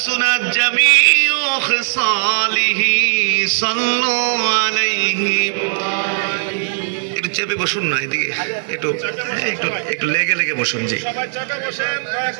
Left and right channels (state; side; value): silent; left; 65 dB below the other